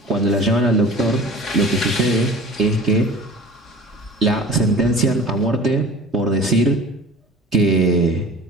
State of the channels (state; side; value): normal; both; correlation 0.41